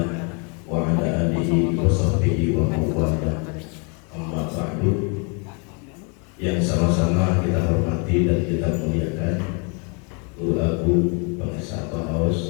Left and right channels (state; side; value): quieter; right; 35.5 dB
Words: wa ala alihi wa sahbihi wa mawala. Amma ba'du. Yang sama-sama kita hormati dan kita muliakan Guru Agung Bang Esa